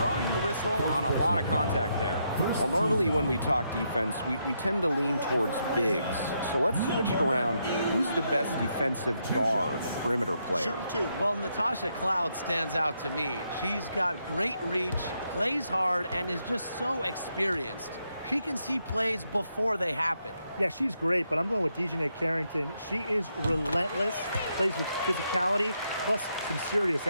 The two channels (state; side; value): inverted; both; correlation -0.79